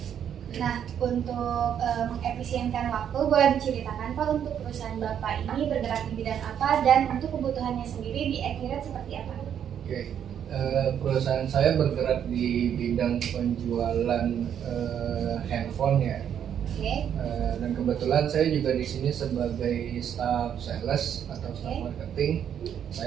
Nah, untuk mengefisienkan waktu, boleh diceritakan Pak untuk perusahaan Bapak ini bergerak di bidang apa dan untuk kebutuhannya sendiri di Accurate seperti apa? Oke, perusahaan saya bergerak di bidang penjualan handphone ya. Oke. Dan kebetulan saya juga di sini sebagai staff sales atau staff marketing.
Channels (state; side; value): quieter; left; 9.0 dB